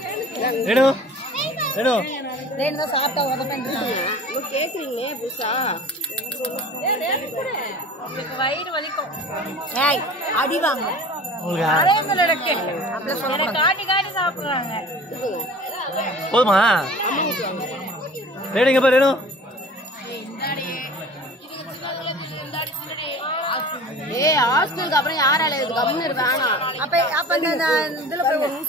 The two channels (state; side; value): normal; both; correlation 0.42